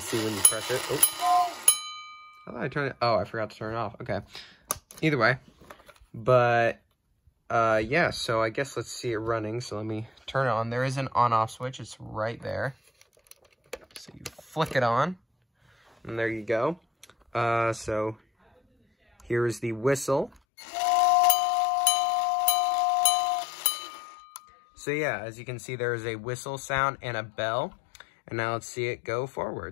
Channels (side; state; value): right; drops out; at 20.4 s